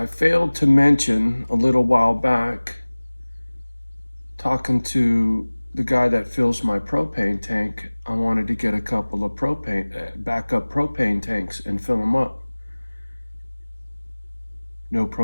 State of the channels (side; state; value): both; inverted; correlation -1.00